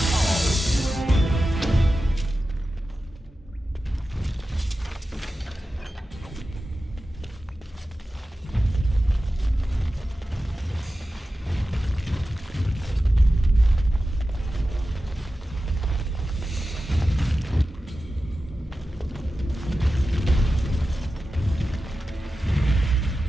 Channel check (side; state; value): both; normal; correlation 0.93